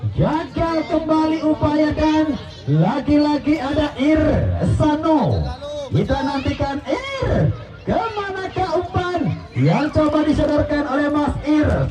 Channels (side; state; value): both; identical; correlation 1.00